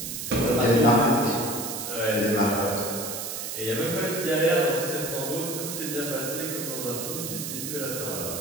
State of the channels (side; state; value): right; noise; hiss, 5 dB below the sound